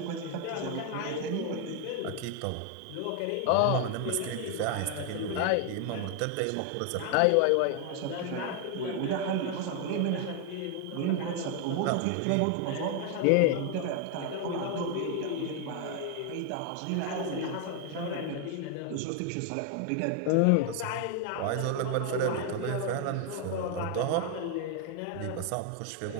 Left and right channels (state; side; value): different; both; correlation 0.00